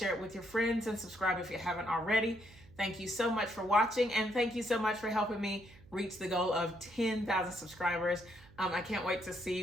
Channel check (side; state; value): right; noise; hum, 23 dB below the sound